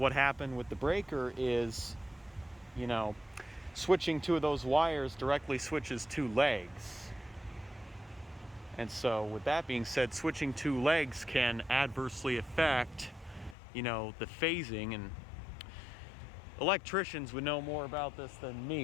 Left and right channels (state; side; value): drops out; right; at 13.6 s